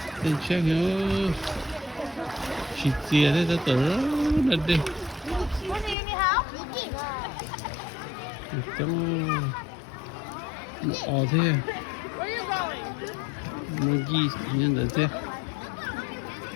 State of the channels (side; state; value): right; drops out; at 6.0 s